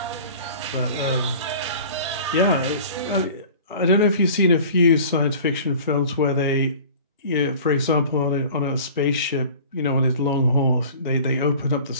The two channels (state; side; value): inverted; both; correlation -0.43